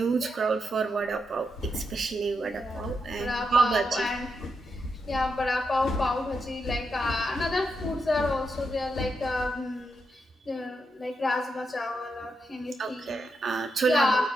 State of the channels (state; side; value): normal; both; correlation 0.84